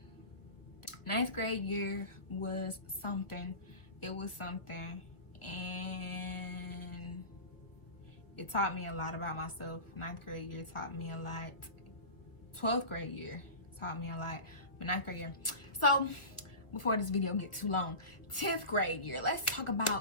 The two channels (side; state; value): right; late; 1.4 ms